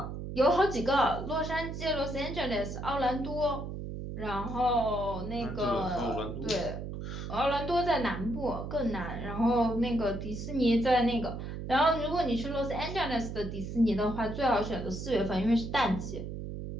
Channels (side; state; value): right; noise; hum, 7 dB below the sound